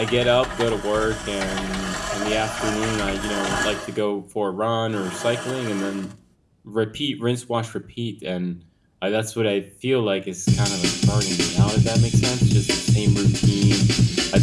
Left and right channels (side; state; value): both; identical; correlation 1.00